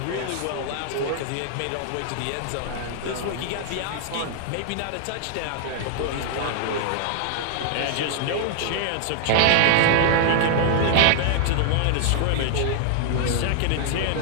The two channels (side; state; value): both; different; correlation 0.00